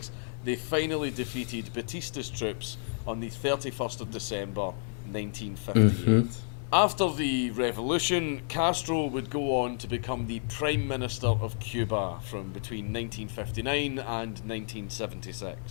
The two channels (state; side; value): silent; right; 57 dB below the other